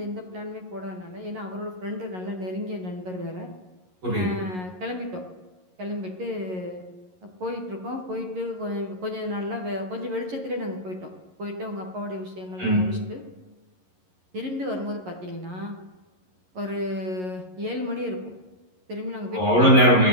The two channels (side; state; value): left; late; 11 ms